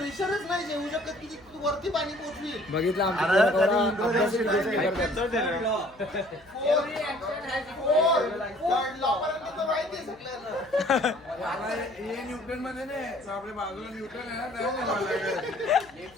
नाही जेवू शकत की तू वरती पाणी पोचली. बघितलं आमच्या माहिती आहे सगळ्यांना. न्यूटन मध्ये नाही आपल्या बाजूला न्यूटन आहे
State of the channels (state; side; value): noise; left; hum, 28 dB below the sound